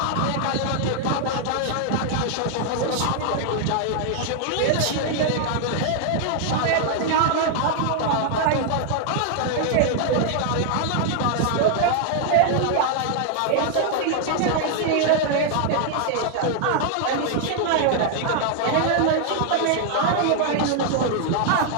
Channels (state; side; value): different; both; correlation 0.00